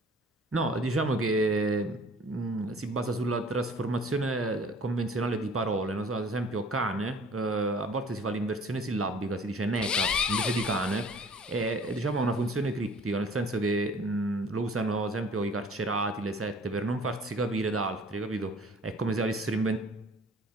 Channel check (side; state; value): both; normal; correlation 0.50